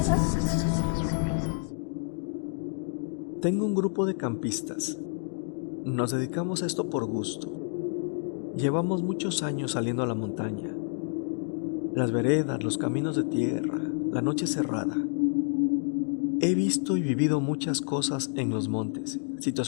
Tengo un grupo de campistas. Nos dedicamos a esto por gusto. Llevamos muchos años saliendo a la montaña. Las veredas, los caminos de tierra, la noche cerrada. He visto y vivido muchas cosas en los montes,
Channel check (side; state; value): right; silent; 59 dB below the other